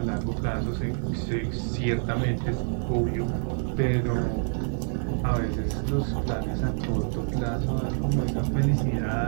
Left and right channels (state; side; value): silent; left; 60 dB below the other